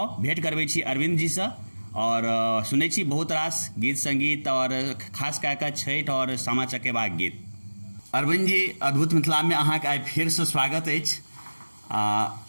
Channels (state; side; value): inverted; both; correlation -1.00